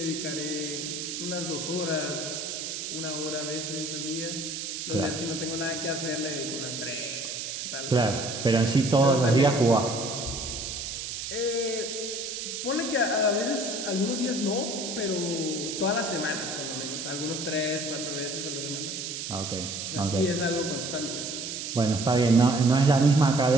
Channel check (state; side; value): noise; right; hiss, 5 dB below the sound